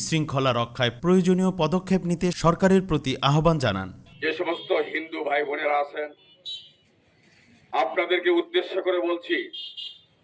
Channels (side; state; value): both; identical; correlation 1.00